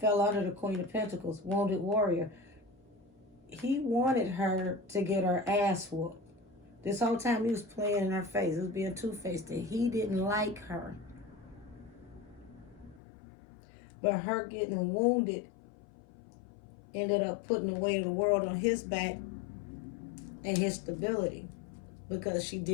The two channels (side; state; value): right; drops out; at 13.0 s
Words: under the Queen of Pentacles, wounded warrior. He wanted her to get her ass whooped. This whole time he was playing in her face. He was being two-faced. He didn't like her. But her getting wounded ended up putting the weight of the world on his back and his stability, because she